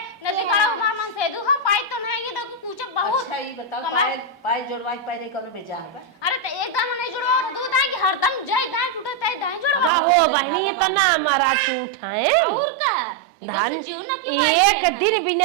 नदी बड़ा मामन से दू हम पाई तो नहीं ये तो पूछ बहुत अच्छा ये बताओ कमाल। पाए जोड़वाई पाए कब बेचा है अरे तो एकदम नहीं जुड़ो दूध आई कि हरदम जय दाई टूटे तय दाई जुड़ो का हो बहनी ये तो ना हमारा झूठ है और का धान जीव ना की एक दिन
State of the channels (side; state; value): left; drops out; at 9.9 s